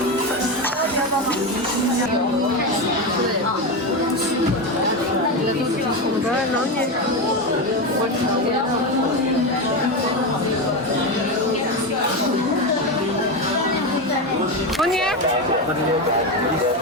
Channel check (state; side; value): normal; both; correlation 0.15